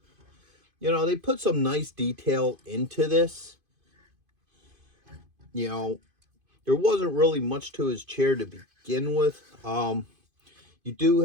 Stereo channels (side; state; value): left; late; 2.5 ms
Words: You know, they put some nice detail into this. You know, there wasn't really much to his chair to begin with. You do